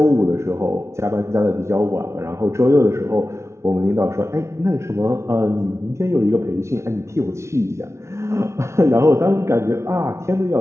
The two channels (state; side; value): late; left; 0.13 ms